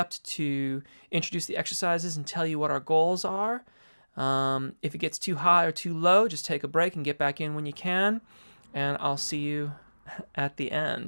to introduce the exercises and tell you what our goals are. If it gets too high or too low, just take a break and get back in when you can, and I'll see you at the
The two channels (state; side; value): inverted; both; correlation -1.00